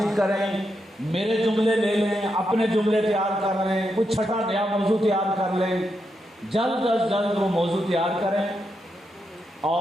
کریں، میرے جملے لے لیں، اپنے جملے تیار کر لیں، کچھ چھٹا نیا موضوع تیار کر لیں، جلد از جلد وہ موضوع تیار کریں،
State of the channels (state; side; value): normal; both; correlation 0.83